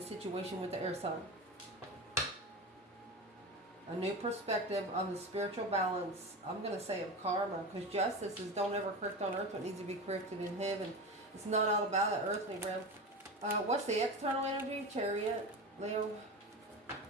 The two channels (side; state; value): both; normal; correlation 0.25